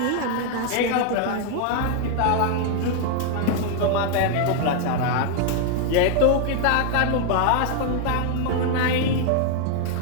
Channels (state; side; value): different; both; correlation 0.00